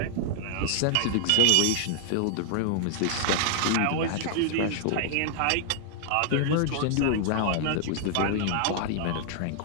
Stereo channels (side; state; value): both; different; correlation 0.00